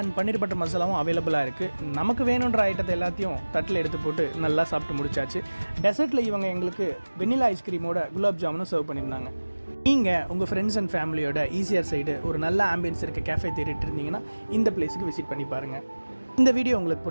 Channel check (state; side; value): inverted; both; correlation -1.00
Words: பன்னீர் பட்டர் மசாலாவும் அவைலபிளாக இருக்குது. நமக்கு வேணுன்ற ஐட்டத்தை எல்லாத்தையும் தட்டில் எடுத்து போட்டு நல்லா சாப்பிட்டு முடிச்சாச்சு. டெசர்ட்டில் இவங்க எங்களுக்கு வெண்ணிலா ஐஸ்கிரீமோட குலாப் ஜாமுனும் சர்வ் பண்ணியிருந்தாங்க. நீங்கள் உங்கள் ஃப்ரெண்ட்ஸ் அண்ட் ஃபேமிலியோட ஈசிஆர் சைடு ஒரு நல்ல ஆம்பியன்ஸ் இருக்க கேஃபே தேடிட்டு இருந்தீங்கன்னா இந்த பிளேஸுக்கு விசிட் பண்ணி பாருங்கள். இந்த வீடியோ உங்களுக்கு